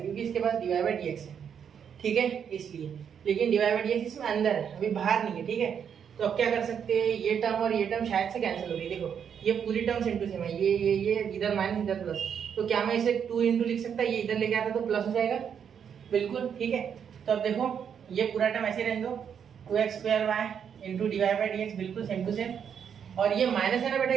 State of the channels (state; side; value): quieter; left; 7.8 dB